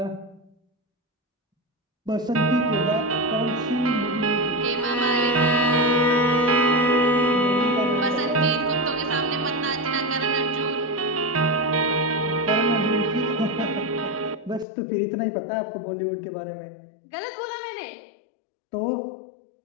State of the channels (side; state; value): right; drops out; at 14.7 s